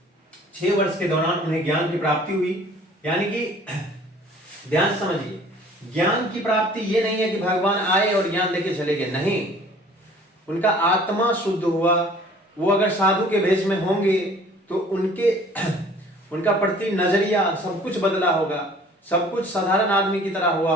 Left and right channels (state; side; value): normal; both; correlation 0.51